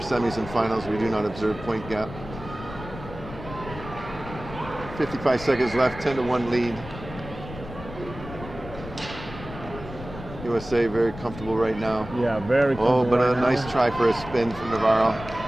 and finals, we do not observe point gap. 55 seconds left, 10-1 lead. USA very comfortable right now. Yeah, very comfortable. Oh, but right a nice now. try for a spin from Navarro.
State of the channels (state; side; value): noise; left; rumble, 13 dB below the sound